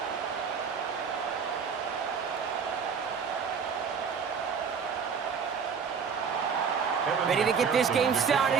Ready to get this game started.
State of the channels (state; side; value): quieter; left; 6.3 dB